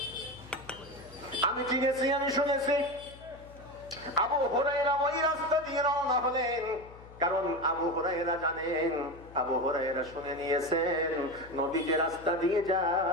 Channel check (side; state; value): left; noise; hum, 19 dB below the sound